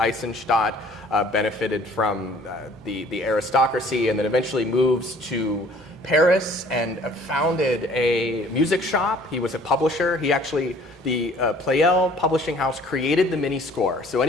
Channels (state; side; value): normal; both; correlation 0.54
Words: benefited from the aristocracy, and then eventually moves to Paris and founded a music shop. He was a publisher. He actually, the Pleyel Publishing House created the mini score. So